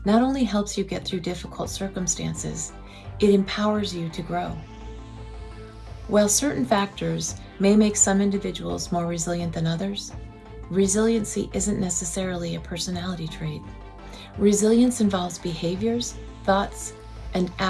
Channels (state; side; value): identical; both; correlation 1.00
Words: not only helps you get through difficult circumstances, it empowers you to grow. While certain factors may make some individuals more resilient than others, resiliency isn't necessarily a personality trait. Resilience involves behaviors, thoughts, and